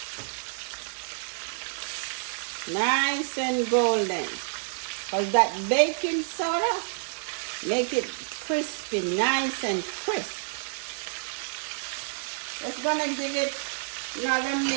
Nice and golden. Because that baking soda make it crispy, nice and crisp. Just gonna give it another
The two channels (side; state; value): left; silent; digital silence